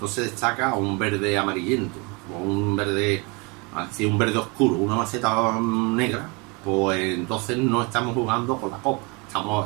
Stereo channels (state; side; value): quieter; left; 29.5 dB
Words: destaca un verde amarillento o un verde, así un verde oscuro, una maceta negra, pues entonces no estamos jugando con la copa,